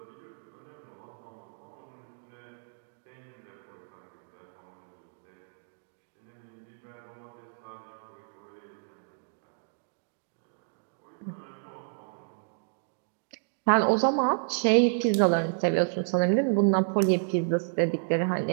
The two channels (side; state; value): left; silent; digital silence